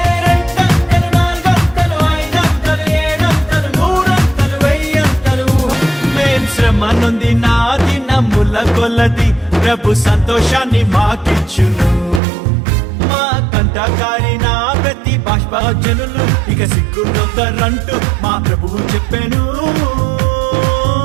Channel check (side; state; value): left; drops out; at 12.2 s